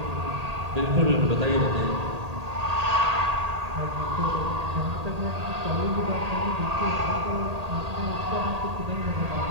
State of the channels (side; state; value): left; late; 1.8 ms